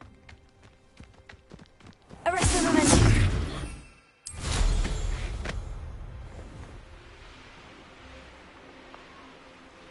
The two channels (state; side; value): identical; both; correlation 1.00